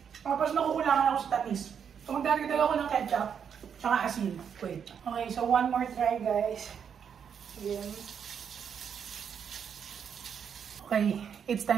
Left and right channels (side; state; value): left; quieter; 7.5 dB